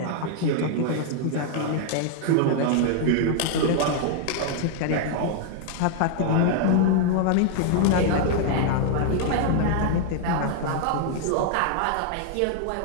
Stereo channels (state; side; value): different; both; correlation 0.00